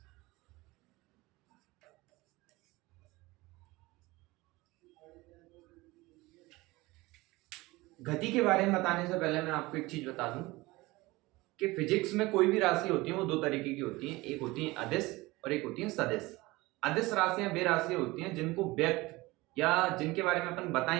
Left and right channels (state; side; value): quieter; left; 21.1 dB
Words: गति के बारे में बताने से पहले मैं आपको एक चीज बता दूं कि फिजिक्स में कोई भी राशि होती है वो दो तरीके की होती है। एक होती है अदिश और एक होती है सदिश। अदिश राशियां वे राशियां होती हैं जिनको व्यक्त या जिनके बारे में अपन